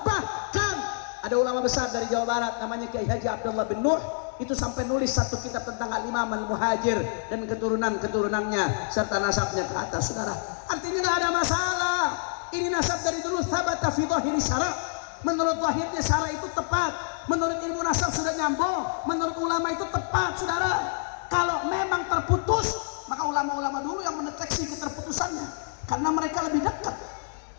bahkan ada ulama besar dari Jawa Barat namanya Kiai Haji Abdullah bin Nuh, itu sampai nulis satu kitab tentang Al-Imam Al-Muhajir dan keturunan-keturunannya serta nasabnya ke atas saudara. Artinya nggak ada masalah. Ini nasab dari dulu thabata fi dhahiri syara'. Menurut lahirnya syara' itu tepat, menurut ilmu nasab sudah nyambung, menurut ulama itu tepat saudara. Kalau memang terputus, maka ulama-ulama dulu yang mendeteksi keterputusannya, karena mereka lebih dekat.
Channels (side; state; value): right; silent; digital silence